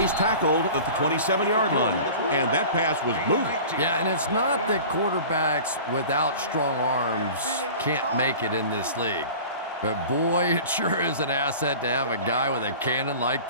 tackled at the 27-yard line, and that pass was moving. Yeah, and it's not that quarterbacks without strong arms can't make it in this league. But boy, it sure is an asset to have a guy with a cannon like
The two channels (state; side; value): inverted; both; correlation -0.39